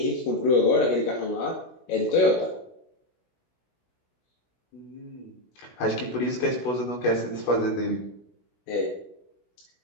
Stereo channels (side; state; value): right; late; 16 ms